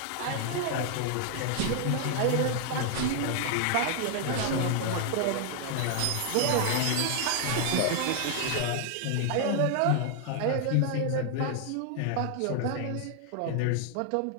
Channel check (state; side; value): different; both; correlation 0.00